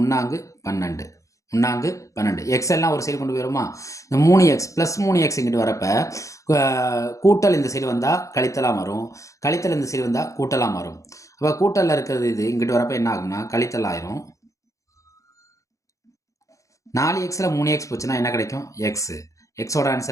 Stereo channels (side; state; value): right; late; 0.15 ms